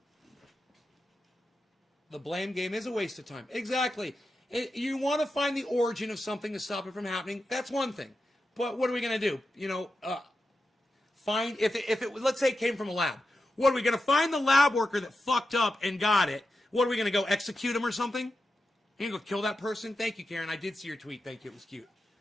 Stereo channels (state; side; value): normal; both; correlation 0.90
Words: The blame game is a waste of time. Exactly. You want to find the origin of something to stop it from happening. That's one thing. But what are we going to do? You know, find, if it, let's say it came from a lab. What, are we going to find the lab worker that fucked up and got it? What, are we going to go execute him or something? You going to go kill that person? Thank you, Karen. I did see your tweet. Thank you. It was cute.